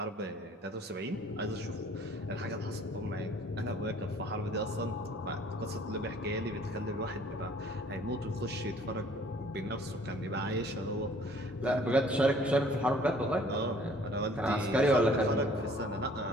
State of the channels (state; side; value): normal; both; correlation 0.55